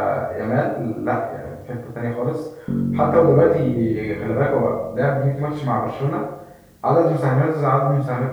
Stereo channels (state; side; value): identical; both; correlation 1.00